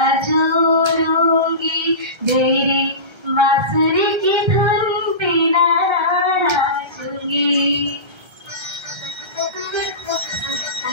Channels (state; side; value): late; left; 1.3 ms